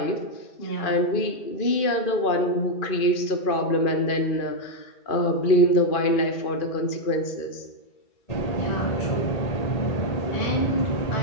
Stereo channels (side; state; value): right; late; 2.4 ms